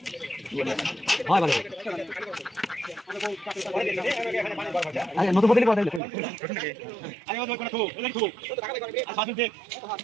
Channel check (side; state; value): left; drops out; at 6.0 s